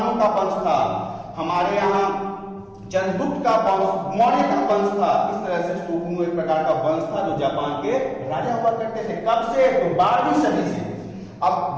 का वंश था, हमारे यहाँ चंद्रगुप्त का वंश, मौर्य का वंश था। इस तरह से शोगुनों एक प्रकार का वंश था जो जापान के राजा हुआ करते थे। कब से? तो 12वीं सदी से। अब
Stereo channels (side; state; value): both; identical; correlation 1.00